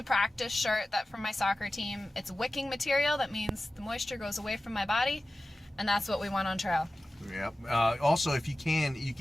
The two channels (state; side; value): normal; both; correlation 0.95